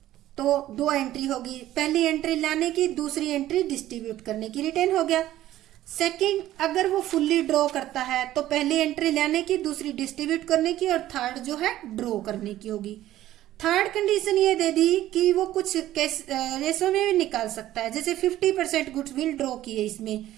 तो दो एंट्री होगी, पहली एंट्री लाने की, दूसरी एंट्री डिस्ट्रीब्यूट करने की, रिटेन हो गया। सेकंड, अगर वो फुल्ली ड्रॉ करता है तो पहली एंट्री लाने की, दूसरी डिस्ट्रीब्यूट करने की, और थर्ड जो है ड्रॉ करने की होगी। थर्ड कंडीशन ये दे दी कि वो कुछ रेशो में भी निकाल सकता है, जैसे 50% गुडविल ड्रॉ की है इसमें,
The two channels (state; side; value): quieter; left; 13.9 dB